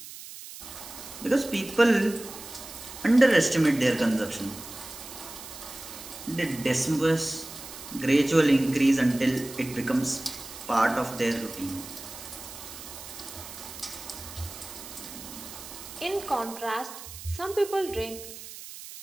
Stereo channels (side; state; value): right; noise; hiss, 13 dB below the sound